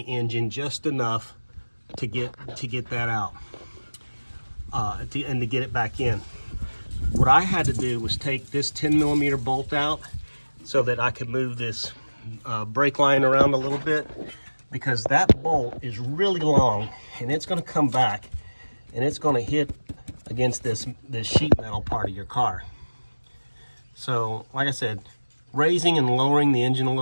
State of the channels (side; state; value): both; inverted; correlation -1.00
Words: engine just enough to get that out, and to get it back in. What I had to do was take this 10 millimeter bolt out so that I could move this brake line around a little bit, because that bolt is really long and it's going to come back and it's going to hit against this sheet metal part of your car. So like I said, raising and lowering the engine a